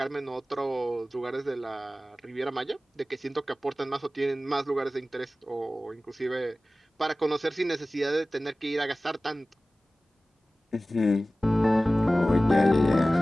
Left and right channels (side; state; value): both; normal; correlation 0.97